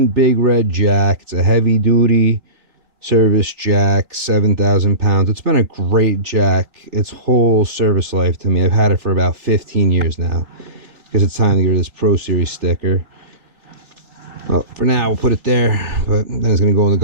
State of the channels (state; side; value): late; left; 3.4 ms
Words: Big Red jack. It's a heavy duty service jack, 7,000 pounds. It's been a great jack its whole service life to me. I've had it for about 15 years now because it's time to get rid of this Pro Series sticker. Well, for now, we'll put it there, but then it's going to go in the